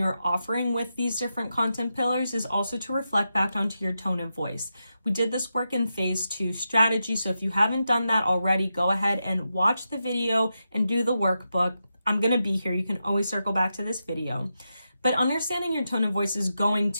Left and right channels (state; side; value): inverted; both; correlation -0.87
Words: offering with these different content pillars is also to reflect back onto your tone of voice. We did this work in phase 2 strategy, so if you haven't done that already, go ahead and watch the video and do the workbook. I'm going to be here. You can always circle back to this video. But understanding your tone of voice is going